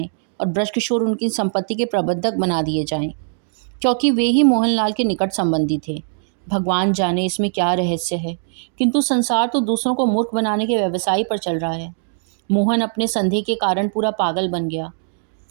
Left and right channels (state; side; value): silent; left; digital silence